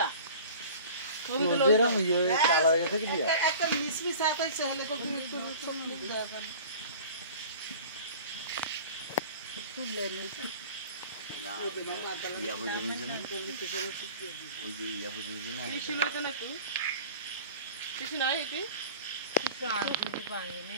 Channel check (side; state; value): both; inverted; correlation -0.41